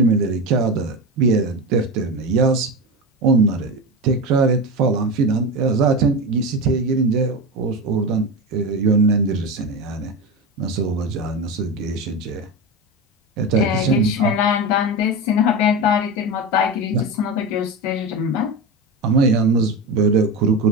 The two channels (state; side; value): normal; both; correlation 0.20